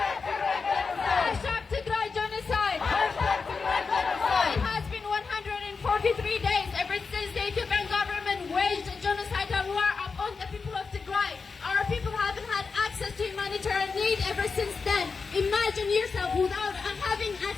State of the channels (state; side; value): quieter; right; 4.8 dB